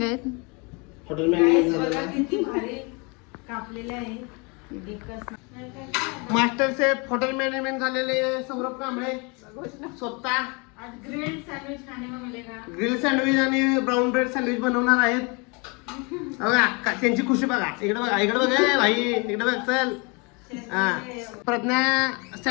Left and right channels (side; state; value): right; quieter; 30.4 dB